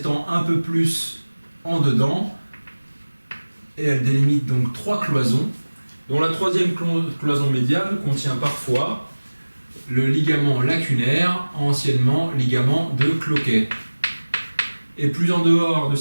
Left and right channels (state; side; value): inverted; both; correlation -1.00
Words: un peu plus en dedans, et elle délimite donc 3 cloisons, dont la troisième cloison médiale contient parfois le ligament lacunaire, anciennement ligament de Cloquet. Et plus en dehors de